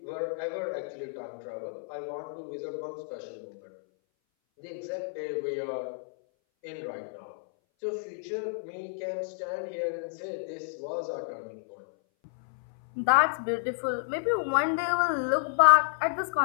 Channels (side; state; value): right; silent; 58 dB below the other